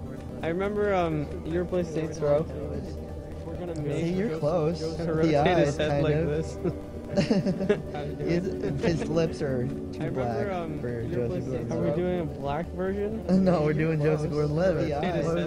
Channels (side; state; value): both; identical; correlation 1.00